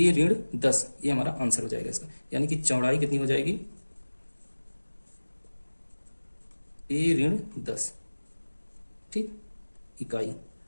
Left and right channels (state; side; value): inverted; both; correlation -1.00